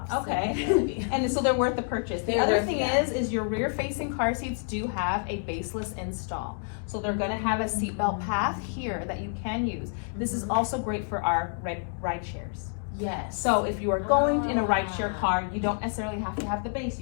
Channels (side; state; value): right; silent; 59 dB below the other